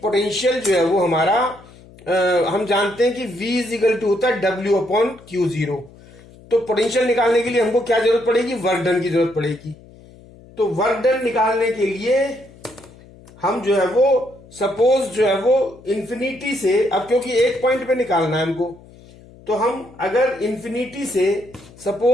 पोटेंशियल जो है वो हमारा हम जानते हैं कि V इज इक्वल टू होता है W/Q0. तो पोटेंशियल निकालने के लिए हमको क्या जरूरत पड़ेगी? वर्क डन की जरूरत पड़ेगी. तो वर्क डन निकालने के लिए हम जो है वो सपोज जो है वो इंफिनिटी से, अब क्योंकि एक पॉइंट पे निकालना है हमको, तो हम अगर इंफिनिटी से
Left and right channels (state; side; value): noise; left; hum, 23 dB below the sound